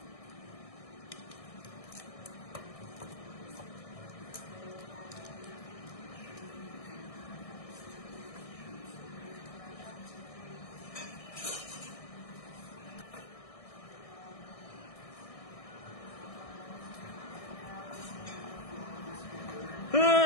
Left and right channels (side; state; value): right; late; 1.6 ms